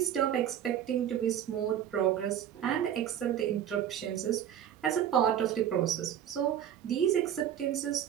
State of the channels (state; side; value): quieter; left; 10.1 dB